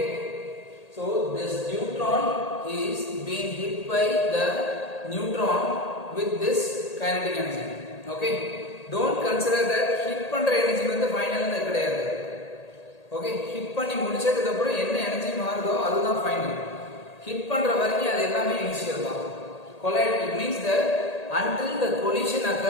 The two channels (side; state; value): right; late; 1.8 ms